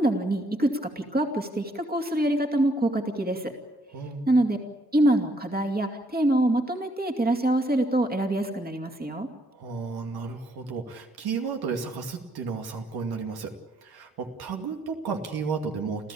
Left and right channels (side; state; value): both; normal; correlation 0.70